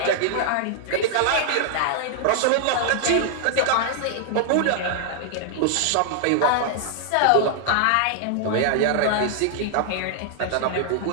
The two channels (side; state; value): both; different; correlation -0.01